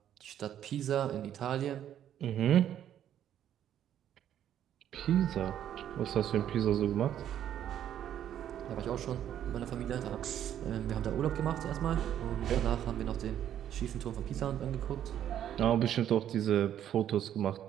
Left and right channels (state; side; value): quieter; left; 10.5 dB